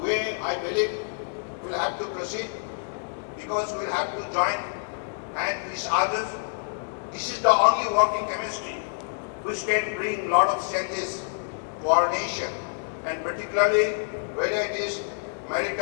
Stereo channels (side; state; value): right; silent; digital silence